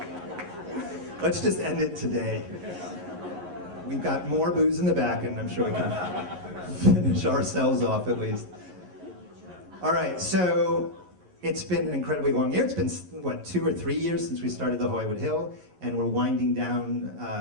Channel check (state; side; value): late; left; 11 ms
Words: Let's just end it today. We've got more booze in the back, and I'm sure we can finish ourselves off at least. All right, so it's been an incredibly long year. It's been, what, 2 or 3 years since we started the Hollywood Hill, and we're winding down